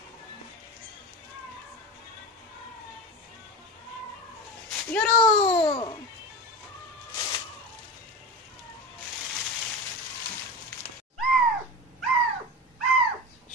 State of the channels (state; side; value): normal; both; correlation 0.27